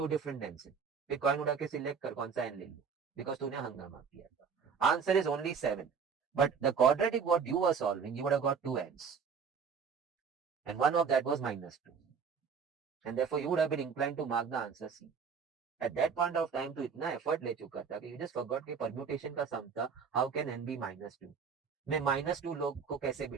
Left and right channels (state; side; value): quieter; left; 6.1 dB